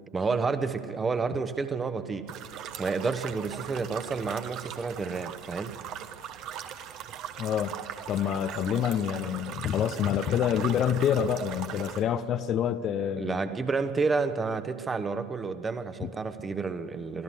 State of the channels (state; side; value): normal; both; correlation 0.61